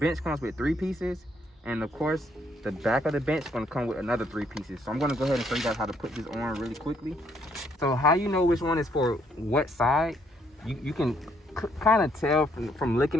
comes with 3 pieces. And of course, the back of the bench is gonna come with another 3 pieces. So I'm gonna go ahead and show you guys how to put this on really quickly. So how you know which one is for what side, you can kind of tell from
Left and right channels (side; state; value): both; normal; correlation 0.70